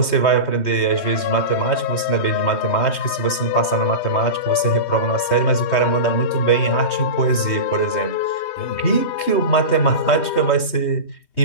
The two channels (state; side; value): late; right; 3.2 ms